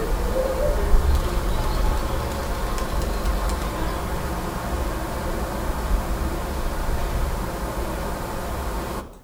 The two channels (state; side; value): identical; both; correlation 1.00